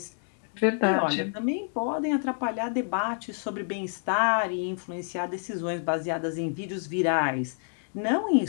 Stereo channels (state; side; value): silent; right; digital silence